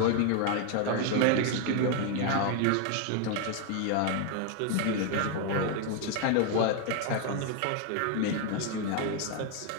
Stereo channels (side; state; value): both; different; correlation 0.01